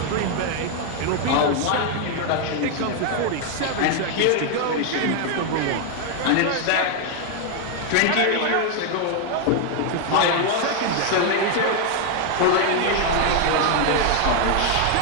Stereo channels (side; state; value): both; different; correlation 0.01